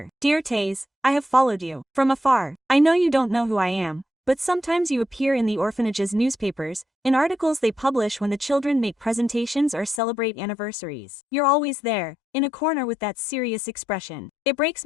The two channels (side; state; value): right; drops out; at 10.0 s